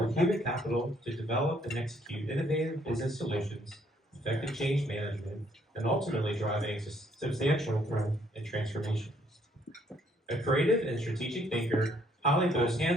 human capital to develop and execute innovative business solutions, effective change management, and ultimately driving substantial growth and transformation. A creative and strategic thinker, Holly boasts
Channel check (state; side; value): normal; both; correlation 0.67